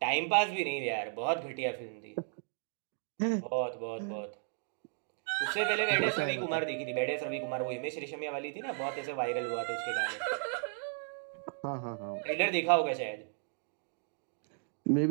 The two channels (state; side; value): silent; left; 55 dB below the other